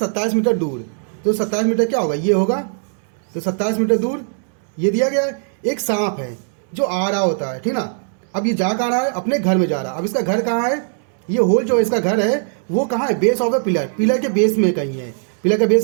मीटर दूर। तो 27 मीटर क्या होगा, ये होगा। तो 27 मीटर दूर ये दिया गया है। एक सांप है जो आ रहा होता है, ठीक ना। अब ये जा कहाँ रहा है, अपने घर में जा रहा है। अब इसका घर कहाँ है, ये होल जो इसका घर है वो कहाँ है, base of the pillar. Pillar के बेस में कहीं है। पिलर का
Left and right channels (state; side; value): silent; left; digital silence